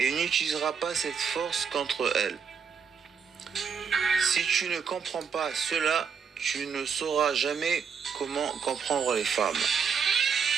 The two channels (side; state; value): left; quieter; 6.4 dB